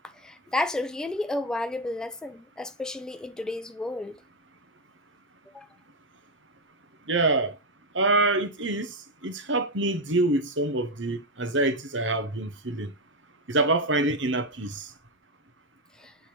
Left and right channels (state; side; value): normal; both; correlation 0.07